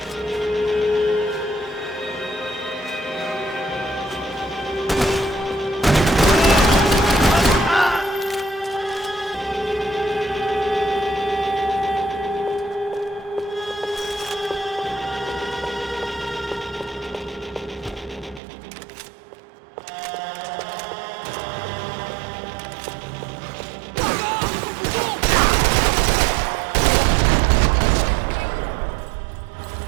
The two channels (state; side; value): drops out; left; at 18.4 s